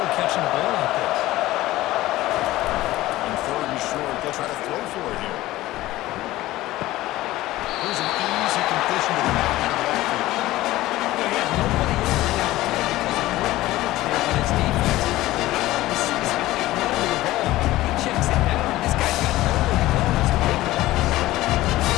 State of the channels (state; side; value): quieter; right; 16.8 dB